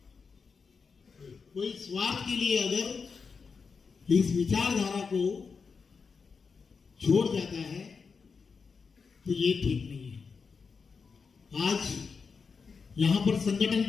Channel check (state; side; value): quieter; right; 5.3 dB